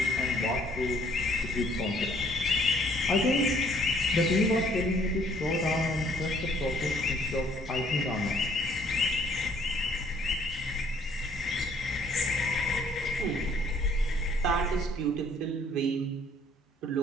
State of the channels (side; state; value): both; normal; correlation 0.62